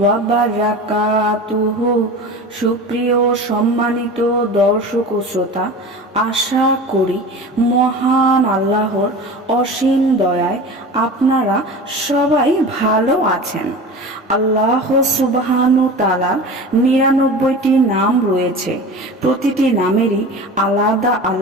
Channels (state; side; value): normal; both; correlation 0.34